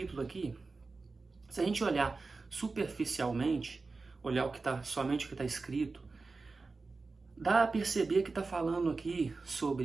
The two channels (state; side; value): quieter; left; 3.9 dB